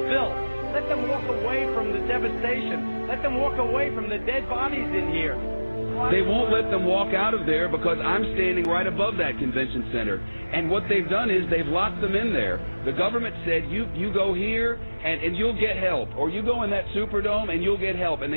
Let them walk away from the devastation. Let them walk away from the dead bodies in here. They won't let them walk out of there because I'm standing right above that convention center. And what they've done is they've locked them in there. The government said, you go here and you'll get help. Or you go in that Superdome and you'll get help. And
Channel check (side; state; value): both; inverted; correlation -1.00